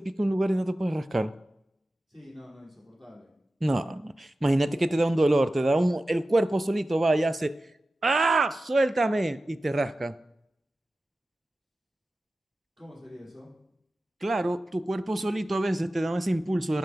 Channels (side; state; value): both; normal; correlation 0.95